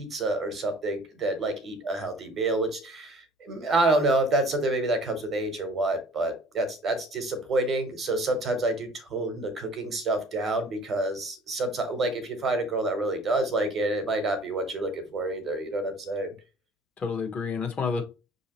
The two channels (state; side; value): normal; both; correlation 0.50